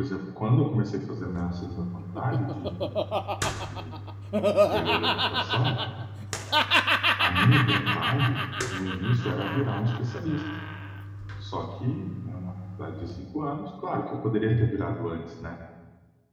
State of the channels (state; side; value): identical; both; correlation 1.00